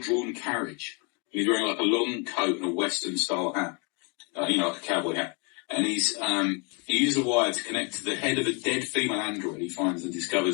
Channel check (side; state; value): right; quieter; 33.0 dB